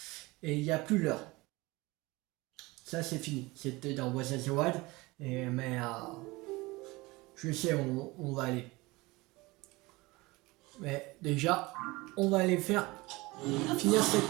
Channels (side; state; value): left; quieter; 22.3 dB